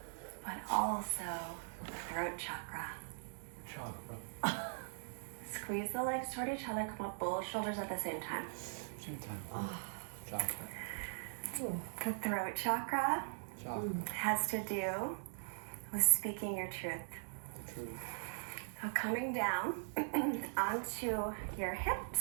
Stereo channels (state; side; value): silent; left; digital silence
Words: but also the throat chakra. Squeeze the legs toward each other, come up both shoulders at the same time. The throat chakra has to do with speaking your truth. So coming down onto your